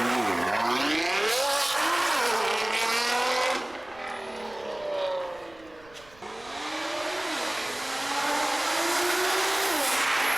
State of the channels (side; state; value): right; noise; rumble, 26 dB below the sound